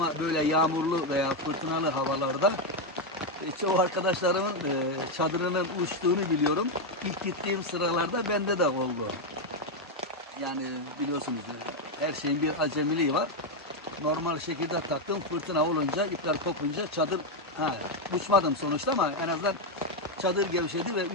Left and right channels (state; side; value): normal; both; correlation 0.04